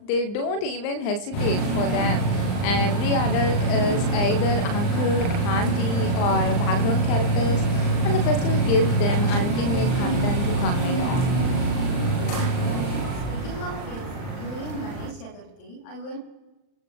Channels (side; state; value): right; late; 39 ms